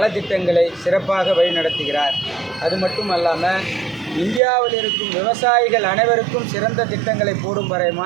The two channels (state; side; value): drops out; left; at 4.4 s